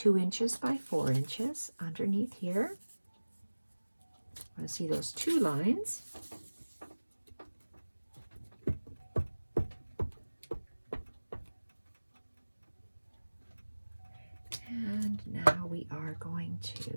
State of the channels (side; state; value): both; inverted; correlation -1.00